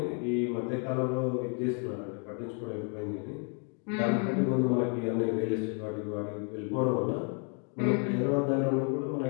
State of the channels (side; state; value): right; quieter; 38.8 dB